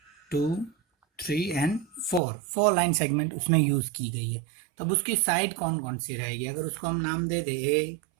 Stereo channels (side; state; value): left; drops out; at 2.2 s